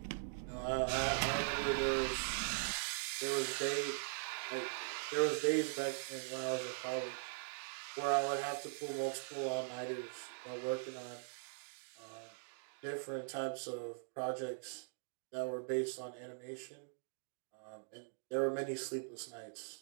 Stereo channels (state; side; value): silent; left; digital silence